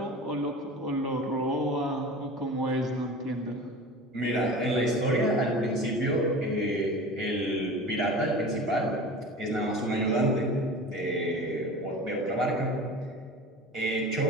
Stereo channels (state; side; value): normal; both; correlation 0.36